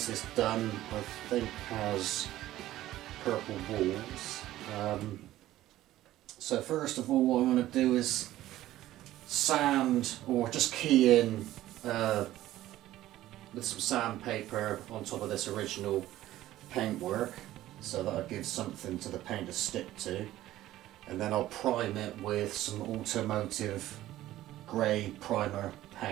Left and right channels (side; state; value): left; quieter; 14.7 dB